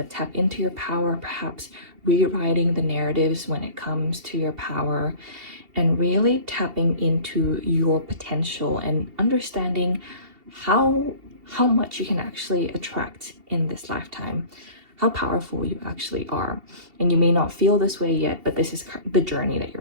tap into your power, perhaps rewriting the narratives when it comes to your power, and really tapping into your potential and understanding how much you can actually attract in this lifetime, how powerful you actually are. And you may not feel this way yet, but this is the journey that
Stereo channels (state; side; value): late; left; 2.7 ms